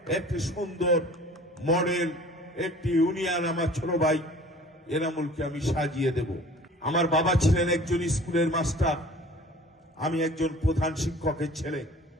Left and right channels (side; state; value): both; normal; correlation 0.47